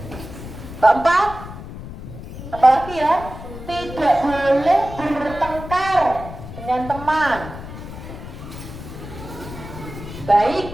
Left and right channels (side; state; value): left; noise; rumble, 12 dB below the sound